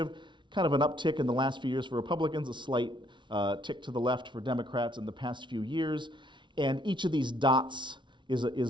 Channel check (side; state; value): left; late; 0.24 ms